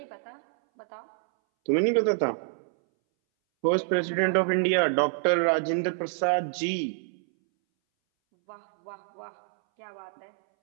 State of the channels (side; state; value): left; silent; 60 dB below the other